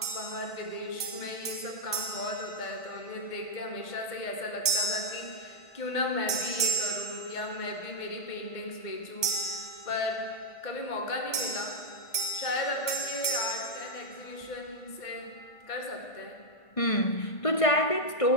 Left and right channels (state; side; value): late; right; 1.5 ms